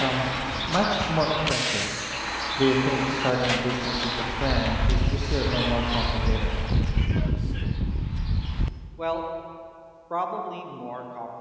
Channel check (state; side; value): identical; both; correlation 1.00